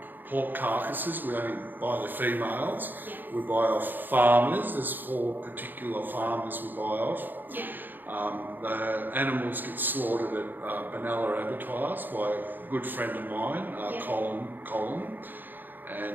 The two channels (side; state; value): left; late; 0.089 ms